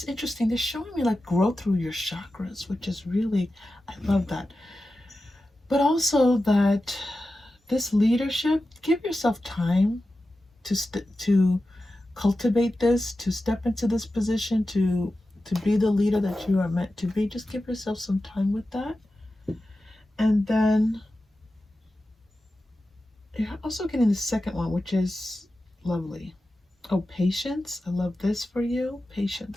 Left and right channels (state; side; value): normal; both; correlation 0.93